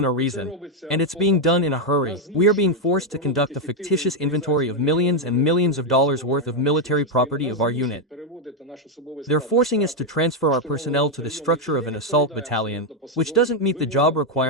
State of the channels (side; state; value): both; normal; correlation 0.03